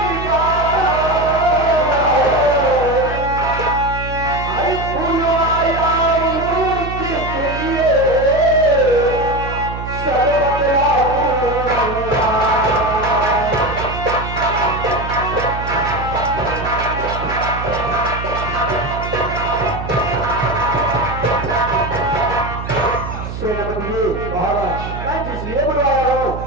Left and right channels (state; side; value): noise; right; hum, 7 dB below the sound